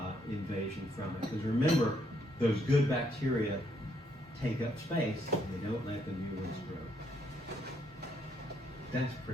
invasion from it. Because remember, those good bacteria take up space, they don't let the new ones grow. That's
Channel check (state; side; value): normal; both; correlation 0.73